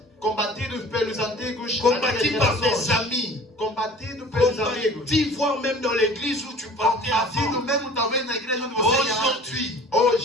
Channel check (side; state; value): both; normal; correlation 0.46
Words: combatidos pelos antigos Combattu antigas par des gerações, amis. combatido pelos amigos, Combattu, voire même dans l'église où tu partais combatido avant. mesmo talvez na igreja onde você ia antes. Aujourd'hui,